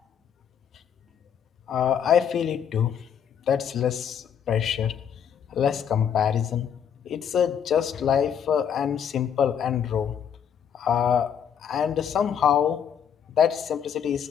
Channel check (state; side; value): quieter; right; 8.3 dB